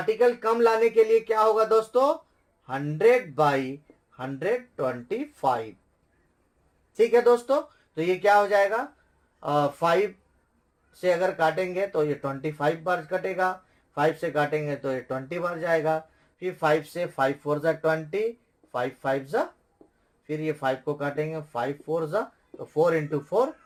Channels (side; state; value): both; identical; correlation 1.00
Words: कम लाने के लिए क्या होगा दोस्तों, 100/125। ठीक है दोस्तों, तो ये क्या हो जाएगा, 5 से अगर काटेंगे तो ये 25 बार कटेगा, 5 से काटेंगे तो ये 20 बार जाएगा। फिर 5 से 5 4 जा 20, 5 5 जा, फिर ये 5 को काटेंगे 5 4 जा, तो 4 × 4